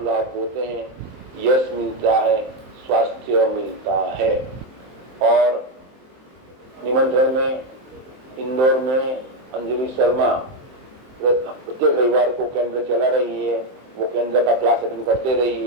लाभ होते हैं, यश मिलता है, स्वास्थ्य मिलता है। और निमंत्रण में इंदौर में अंजलि शर्मा प्रत्येक रविवार को केंद्र चला रही है, वो केंद्र का क्लास अटेंड करते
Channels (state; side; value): late; left; 23 ms